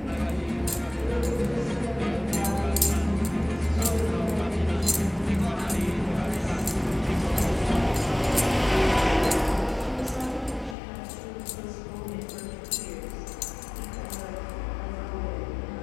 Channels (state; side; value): drops out; right; at 10.8 s